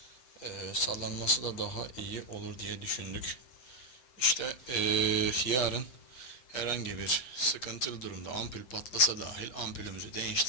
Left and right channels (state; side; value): late; right; 7.7 ms